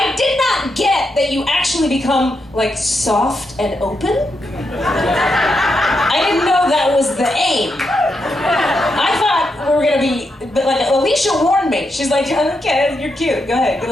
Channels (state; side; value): normal; both; correlation 0.83